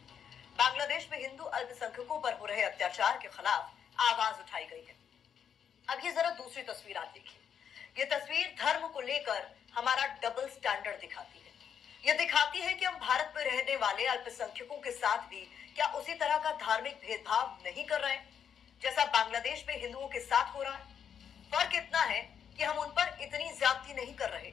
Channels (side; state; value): right; quieter; 8.0 dB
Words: बांग्लादेश में हिंदू अल्पसंख्यकों पर हो रहे अत्याचार के खिलाफ आवाज उठाई गई है। अब ये जरा दूसरी तस्वीर आप देखिए। ये तस्वीर धर्म को लेकर हमारा डबल स्टैंडर्ड दिखाती है। ये दिखाती है कि हम भारत में रहने वाले अल्पसंख्यकों के साथ भी क्या उसी तरह का धार्मिक भेदभाव नहीं कर रहे हैं जैसा बांग्लादेश में हिंदुओं के साथ हो रहा है। फर्क इतना है कि हम उन पर इतनी ज्यादती नहीं कर रहे